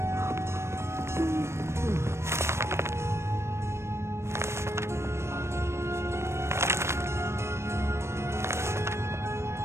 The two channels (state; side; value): late; left; 0.13 ms